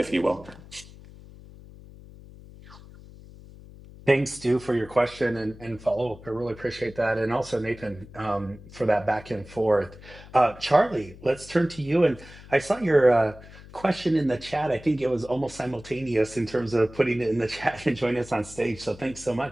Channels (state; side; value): noise; left; hum, 19 dB below the sound